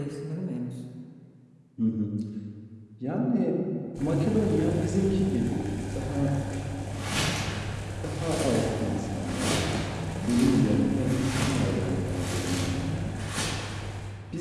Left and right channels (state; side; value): identical; both; correlation 1.00